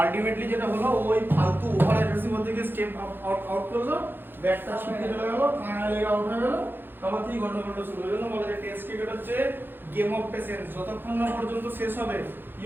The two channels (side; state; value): left; late; 0.099 ms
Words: যেটা হলো ওই ফালতু ওভার অ্যাগ্রেসিভ থেকে স্টেপ আউট করলো, ব্যাটটা ছিটকে চলে গেল, কানা লেগে আউট হয়ে গেল, তারপর থেকে গন্ডগোলটা শুরু হয়ে গেল। বলে যে টেস্ট ক্রিকেট হচ্ছে গেম অফ পেশেন্স, যতক্ষণ না পর্যন্ত শেষ হবে